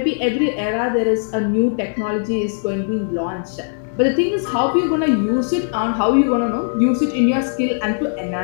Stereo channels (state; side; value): silent; right; digital silence